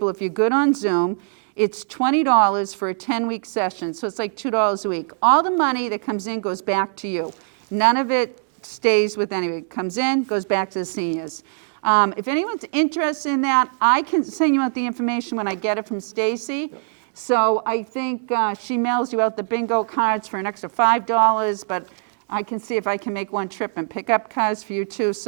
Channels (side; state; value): left; silent; 64 dB below the other